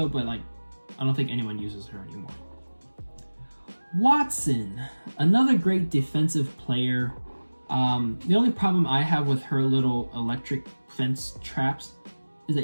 but like I don't think anyone uses her anymore. Wattson, another great defensive player. The only problem I have with her little electric fence traps is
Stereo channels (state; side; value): inverted; both; correlation -1.00